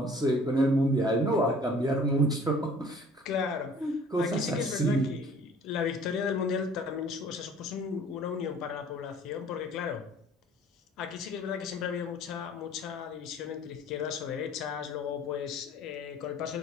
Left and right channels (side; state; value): both; normal; correlation 0.51